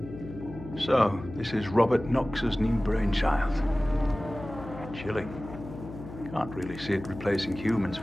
So, this is Robert Knox's new brainchild. Chilling. Can't really see it replacing humans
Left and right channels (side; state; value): left; noise; hum, 12 dB below the sound